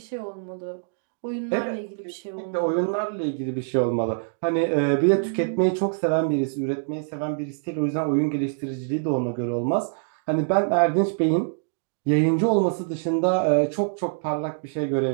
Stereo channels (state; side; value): silent; left; digital silence